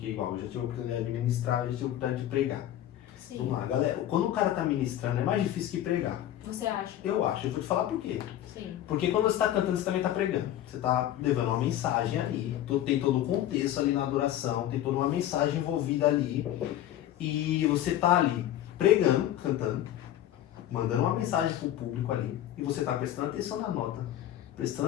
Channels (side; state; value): right; quieter; 12.3 dB